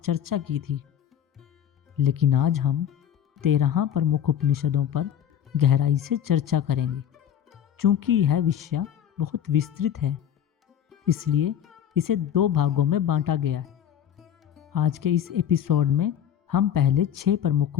की थी, लेकिन आज हम 13 प्रमुख उपनिषदों पर गहराई से चर्चा करेंगे। चूंकि यह विषय बहुत विस्तृत है, इसलिए इसे 2 भागों में बांटा गया है। आज के इस एपिसोड में हम पहले 6 प्रमुख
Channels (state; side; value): quieter; right; 9.6 dB